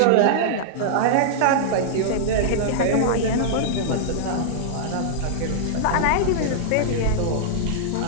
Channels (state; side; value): different; both; correlation -0.02